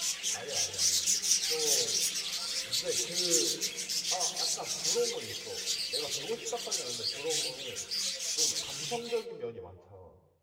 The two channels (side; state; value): both; identical; correlation 1.00